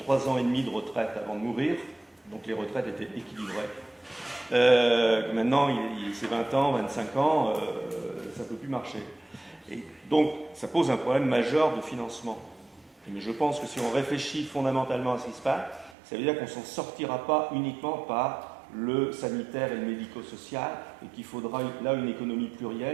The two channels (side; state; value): left; drops out; at 16.0 s